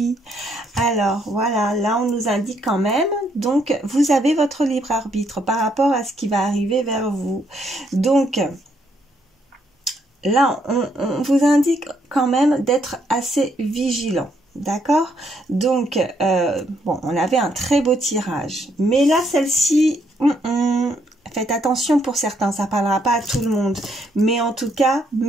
Alors, voilà, là, on nous indique quand même. Donc, vous avez votre libre arbitre par rapport à ce qui va arriver vers vous. Donc... là, on vous indique quand même d'être assez vigilant. D'accord? Donc, bon, on avait un très beau tirage. Mais là, celle-ci, faites attention pour certains, ça parlera pas à tout le monde. Mais en tout cas,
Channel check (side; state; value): both; normal; correlation 0.73